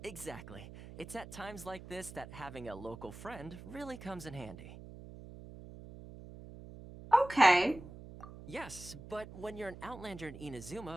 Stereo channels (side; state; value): right; noise; hum, 14 dB below the sound